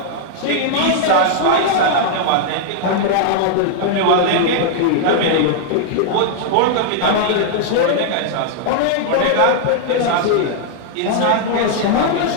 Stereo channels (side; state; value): both; different; correlation -0.01